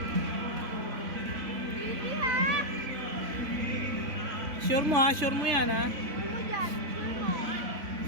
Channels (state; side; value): late; left; 3.6 ms